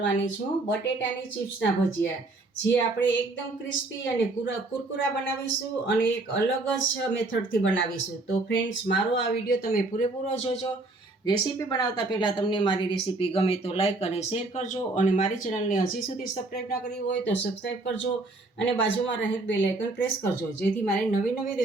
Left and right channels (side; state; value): left; quieter; 3.1 dB